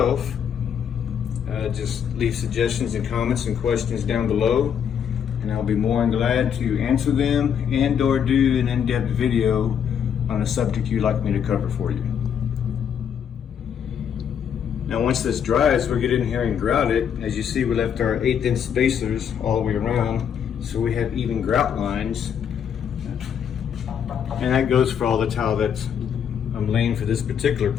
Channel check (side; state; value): right; quieter; 8.1 dB